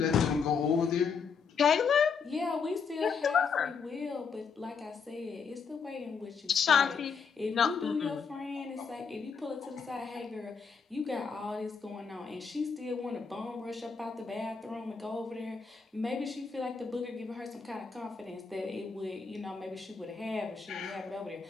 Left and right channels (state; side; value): quieter; right; 5.7 dB